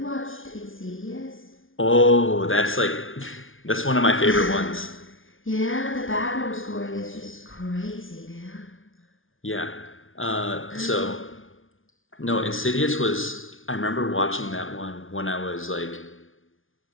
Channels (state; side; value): late; right; 0.58 ms